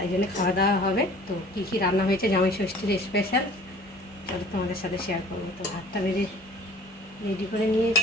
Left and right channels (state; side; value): normal; both; correlation 0.48